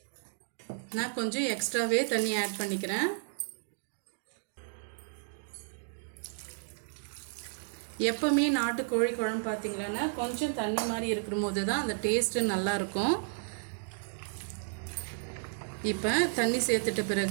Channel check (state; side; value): silent; left; digital silence